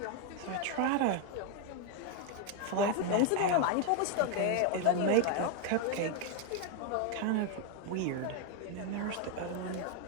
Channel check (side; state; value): both; different; correlation 0.01